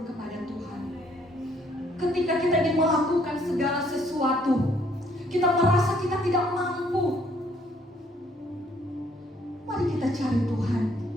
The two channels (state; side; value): normal; both; correlation 0.65